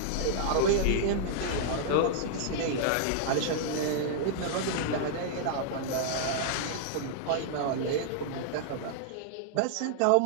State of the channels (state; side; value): different; both; correlation -0.01